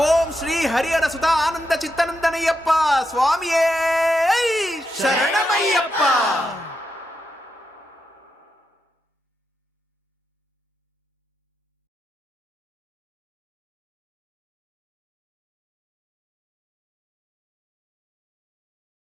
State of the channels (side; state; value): both; normal; correlation 0.85